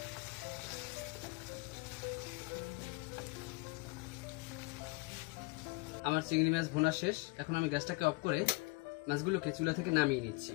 আমার চিংড়ি মাছ ভোনা শেষ। এখন আমি গ্যাসটাকে অফ করে মাছগুলোকে চুলা থেকে নামিয়ে নিচ্ছি।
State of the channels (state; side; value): quieter; right; 26.6 dB